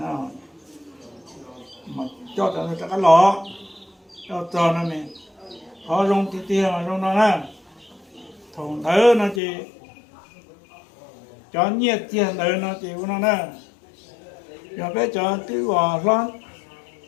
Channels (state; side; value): drops out; right; at 9.4 s